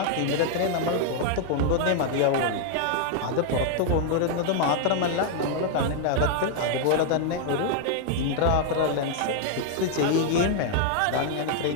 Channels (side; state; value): both; different; correlation 0.00